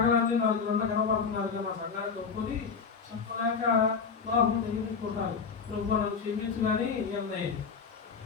4 గంటలు కనబడుతున్నారు కదా, మా సంఘానికి ఒప్పుకొని చెప్పలేక లోపం తెలియకుంటారు. ప్రభు నన్ను క్షమించు కానీ ఏమన్నాయి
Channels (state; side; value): quieter; right; 5.6 dB